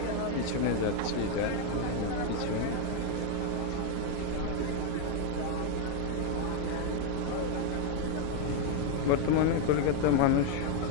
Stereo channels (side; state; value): both; different; correlation 0.00